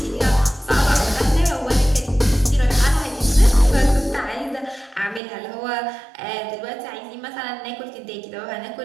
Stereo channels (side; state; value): left; drops out; at 5.2 s